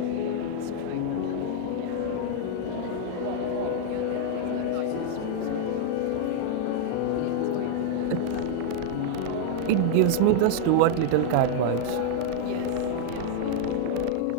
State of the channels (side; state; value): both; different; correlation 0.00